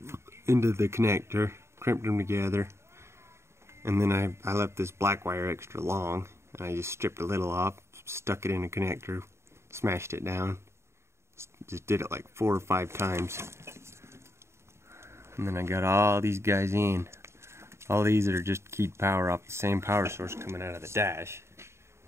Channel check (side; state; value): left; late; 0.13 ms